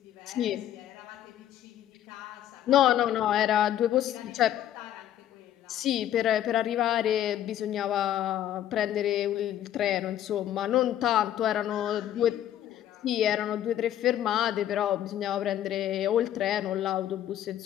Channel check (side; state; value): right; quieter; 11.6 dB